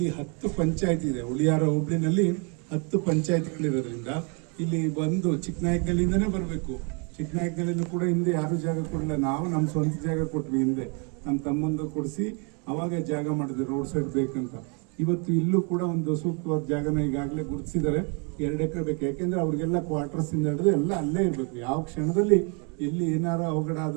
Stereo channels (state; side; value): quieter; left; 35.4 dB